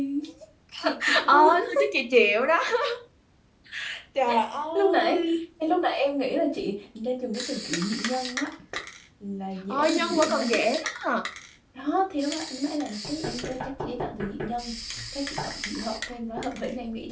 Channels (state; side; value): identical; both; correlation 1.00